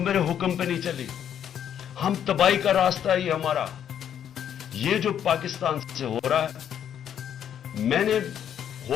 حکم پہ نہیں چلی. ہم تباہی کا راستہ ہے یہ ہمارا. یہ جو پاکستان سے ہو رہا ہے، میں نے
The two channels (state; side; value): quieter; right; 9.4 dB